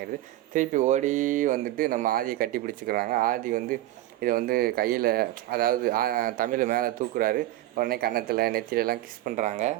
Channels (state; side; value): quieter; left; 15.3 dB